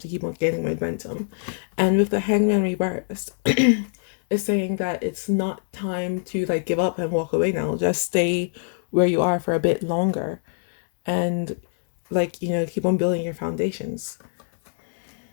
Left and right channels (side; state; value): right; silent; digital silence